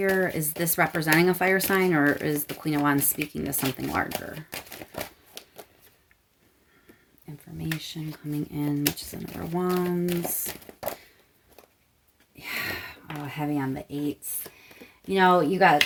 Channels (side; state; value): both; identical; correlation 1.00